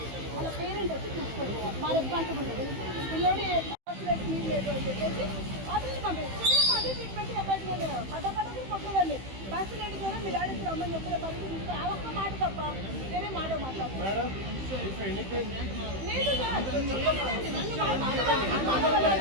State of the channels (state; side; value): late; left; 15 ms